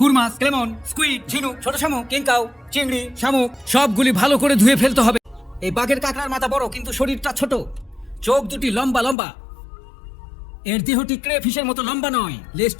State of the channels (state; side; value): drops out; right; at 9.2 s